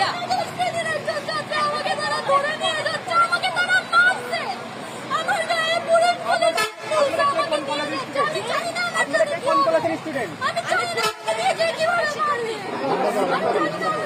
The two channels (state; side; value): identical; both; correlation 1.00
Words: আমাকে তারা ধরে নিয়ে যাচ্ছে, আমাকে তারা মারছে, আমার গায়ে পুলিশ পুলিশ আমাকে নিয়ে যাচ্ছে। আমি জানি না আমার সাথে কি হবে। স্টুডেন্ট আমি জানি না আমাকে নিয়ে গিয়ে কিভাবে মারলি। আমি জানি না।